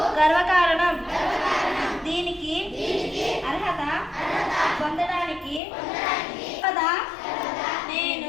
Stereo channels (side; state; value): right; drops out; at 5.6 s